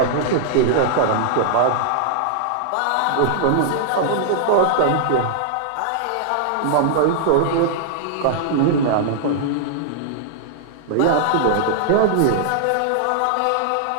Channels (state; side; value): different; both; correlation -0.01